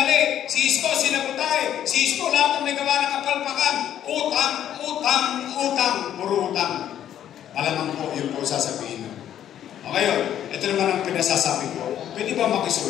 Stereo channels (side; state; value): right; quieter; 10.7 dB